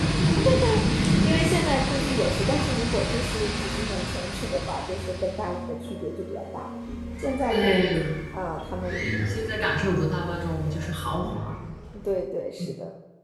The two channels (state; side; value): identical; both; correlation 1.00